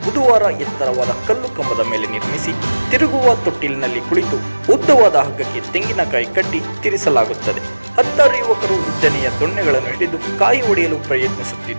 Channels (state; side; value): inverted; both; correlation -1.00